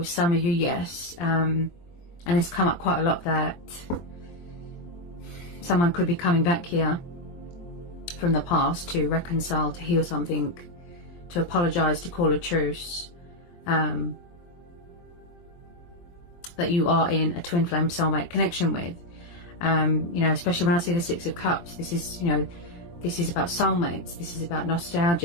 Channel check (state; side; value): late; right; 23 ms